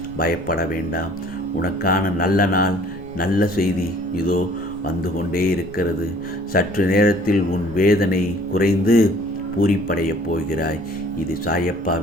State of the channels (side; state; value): left; noise; rumble, 21 dB below the sound